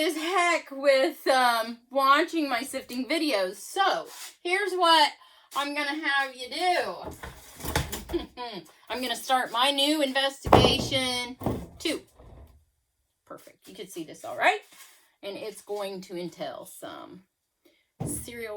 heck with watching my sifting videos. So, here's what I'm going to have you do. I'm going to start my new investigation 2. Perfect. You can see this all right. And it's going to entail some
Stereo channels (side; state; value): both; identical; correlation 1.00